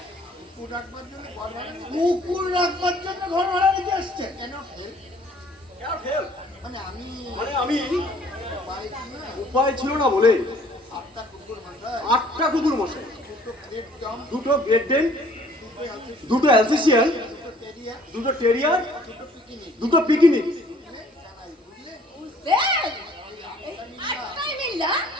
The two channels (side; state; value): both; normal; correlation 0.57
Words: কুকুর রাখবার জন্য ঘর ভাড়া নিতে আসছে। হেল্প মানে আমি মানে আমি পাই কি না উপায় ছিল না বলে 8টা কুকুর মাথায় 8টা কুকুর মশাই, 2টো গ্রেট ডম, 2টো গ্রেট ডেন, 2টো আছে, 2টো অ্যালসেশিয়ান, 2টো টেরিয়া, 2টো টেরিয়ার, 2টো পিকিনিক, 2টো পিকনিক। জানাই বুঝলে? বুঝলেন? এই আটটাই মিল্লা